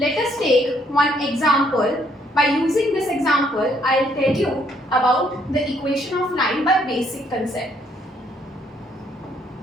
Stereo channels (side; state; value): both; normal; correlation 0.68